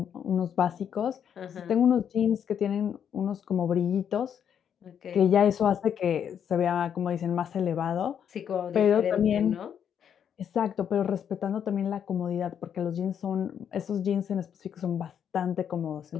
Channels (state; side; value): quieter; right; 8.5 dB